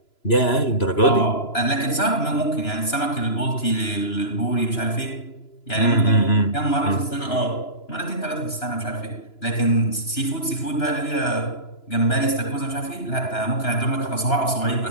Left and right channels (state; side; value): late; right; 2.9 ms